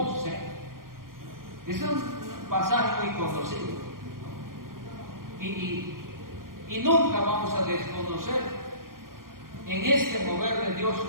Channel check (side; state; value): left; late; 0.91 ms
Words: Es un pasaje muy conocido. Y nunca vamos a desconocer. En este mover de Dios